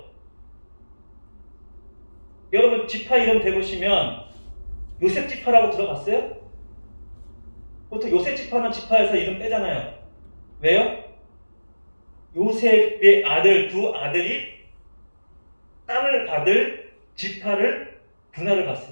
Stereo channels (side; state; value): both; inverted; correlation -1.00